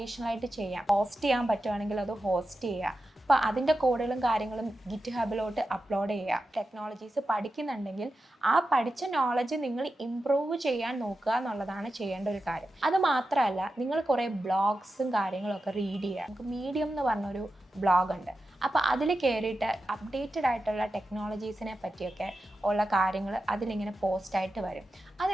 ചെയ്യാം, ഹോസ്റ്റ് ചെയ്യാൻ പറ്റുവാണെങ്കിൽ അത് ഹോസ്റ്റ് ചെയ്യുക. അപ്പോൾ അതിൻ്റെ കോഡുകളും കാര്യങ്ങളും GitHubലോട്ട് അപ്ലോഡ് ചെയ്യുക. ടെക്നോളജീസ് പഠിക്കുന്നുണ്ടെങ്കിൽ ആ പഠിച്ച നോളജ് നിങ്ങൾ ഇംപ്രൂവ് ചെയ്യാൻ നോക്കുക എന്നുള്ളതാണ് ചെയ്യേണ്ട ഒരു കാര്യം. അത് മാത്രമല്ല, നിങ്ങൾ കുറേ ബ്ലോഗ്സും കാര്യങ്ങളൊക്കെ റീഡ് ചെയ്യുക. നമുക്ക് മീഡിയം എന്ന് പറഞ്ഞൊരു ബ്ലോഗ് ഉണ്ട്. അപ്പോൾ അതിൽ കയറിയിട്ട് അപ്ഡേറ്റഡ് ആയിട്ടുള്ള ടെക്നോളജീസിനെ പറ്റിയൊക്കെ ഉള്ള കാര്യങ്ങൾ അതിലിങ്ങനെ പോസ്റ്റായിട്ട് വരും.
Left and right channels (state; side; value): normal; both; correlation 0.91